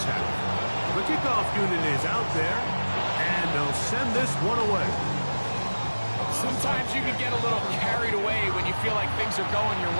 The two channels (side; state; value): both; inverted; correlation -1.00